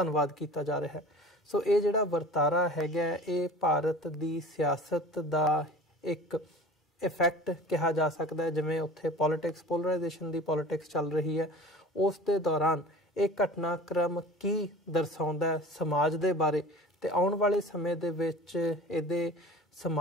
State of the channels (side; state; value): both; normal; correlation 0.41